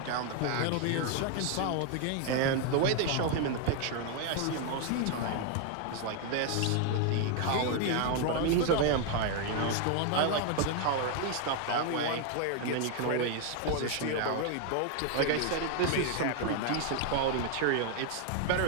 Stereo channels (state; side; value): different; both; correlation 0.00